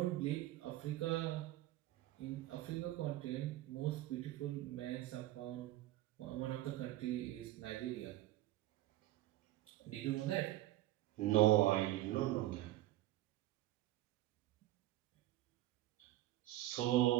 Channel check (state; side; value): quieter; left; 15.8 dB